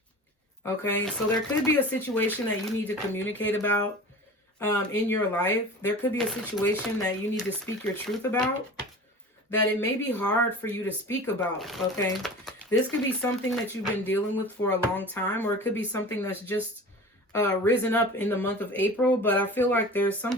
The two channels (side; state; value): both; normal; correlation 0.37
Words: Okay, so there could be a situation that you need to communicate about in your life. There could be a situation that you need to speak your truth about, that it may be hard for you to speak about, okay? This could be something that you've been dealing with for a long time, or it could be something that's just risen up in the month of April, but I feel like there's